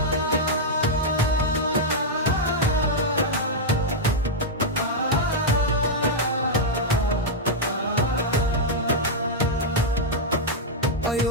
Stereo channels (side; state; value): both; normal; correlation -0.05